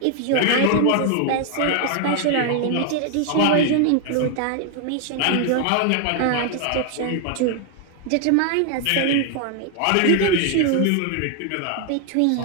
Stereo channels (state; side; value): different; both; correlation 0.00